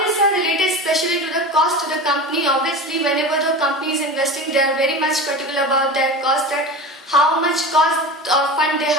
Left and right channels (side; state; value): both; normal; correlation 0.30